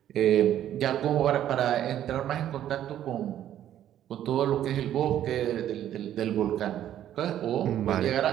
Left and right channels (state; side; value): quieter; left; 11.3 dB